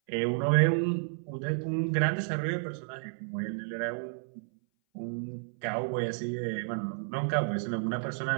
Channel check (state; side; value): silent; left; 57 dB below the other